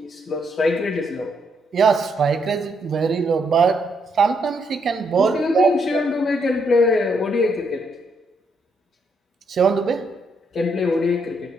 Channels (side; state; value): both; normal; correlation 0.75